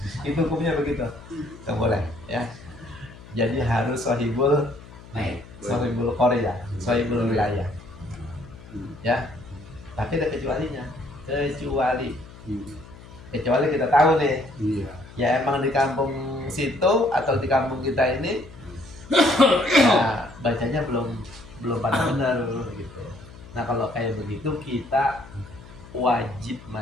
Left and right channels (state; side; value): noise; left; hum, 19 dB below the sound